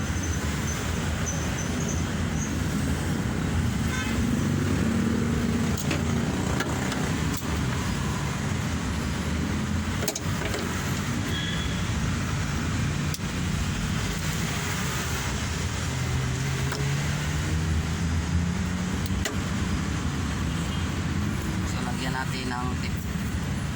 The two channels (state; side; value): identical; both; correlation 1.00